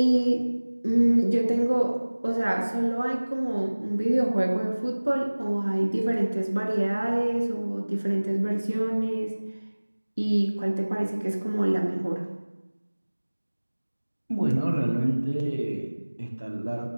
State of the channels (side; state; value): both; inverted; correlation -1.00